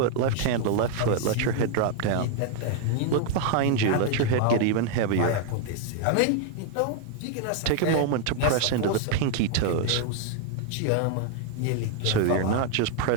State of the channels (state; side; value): different; both; correlation 0.00